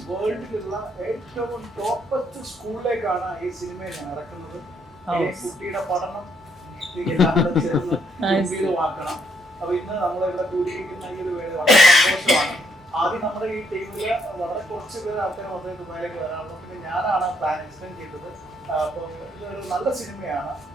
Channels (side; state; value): both; normal; correlation 0.72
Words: വേൾഡിലുള്ള ഏറ്റവും ടോപ്പസ്റ്റ് സ്കൂളിലേക്കാണ് ഈ സിനിമയെ ഞാൻ ഇറക്കുന്നത്. ഈ കുട്ടിയുടെ പഠനം എല്ലാം ചേർന്ന് ഗംഭീരമാക്കണം. അപ്പൊ ഇന്ന് നമ്മളിവിടെ കൂടിയിരിക്കുന്ന ഈ ഒരു വേള വളരെ സന്തോഷമാണ്. ആദ്യം നമ്മുടെ ഈ ടീമില് വളരെ കുറച്ച് പേര് ആൾക്കാർ മാത്രമേ ദുബായിലേക്ക് വരാറുള്ളൂ. പിന്നെ ഞാനാണ് പ്ലാൻ എക്സ്പ്ലെയിൻ ചെയ്തത്. അപ്പോൾ ഇതൊരു നല്ല സിനിമയാണ്.